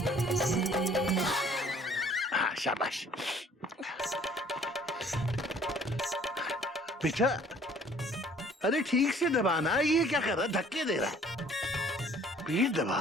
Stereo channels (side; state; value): both; normal; correlation 0.56